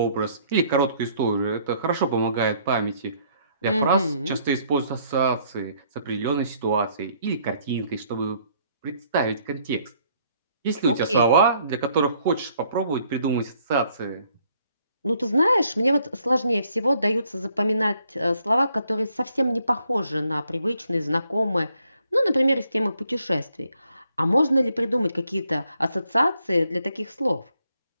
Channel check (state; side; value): inverted; both; correlation -0.67